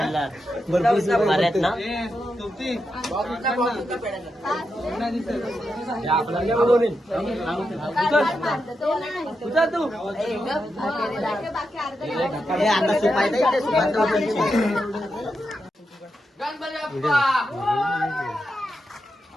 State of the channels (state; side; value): normal; both; correlation 0.86